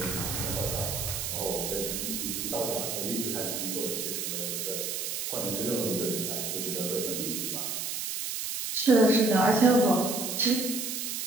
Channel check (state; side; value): noise; right; hiss, 3 dB below the sound